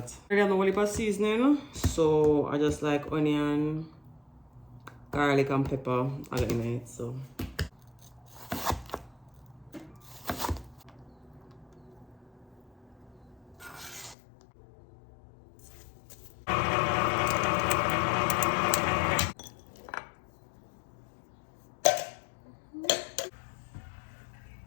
I got no heap of seasoning, so I just like onion, garlic and pepper all in it. So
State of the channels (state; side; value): drops out; right; at 14.2 s